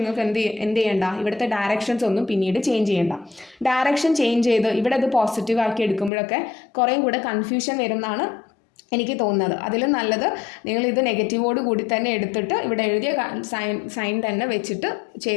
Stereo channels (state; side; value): drops out; right; at 6.1 s